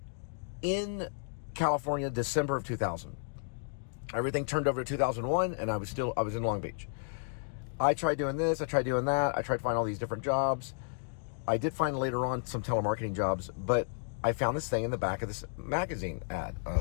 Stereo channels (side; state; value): right; silent; digital silence